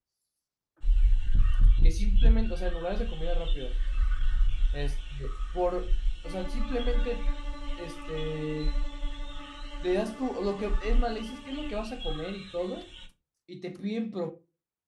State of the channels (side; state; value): both; identical; correlation 1.00